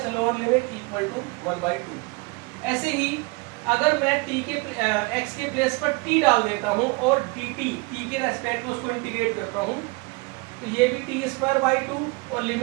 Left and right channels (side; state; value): left; quieter; 27.4 dB